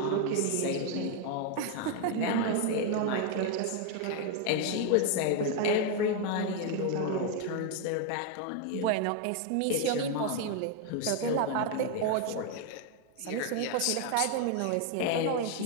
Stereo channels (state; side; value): different; both; correlation 0.01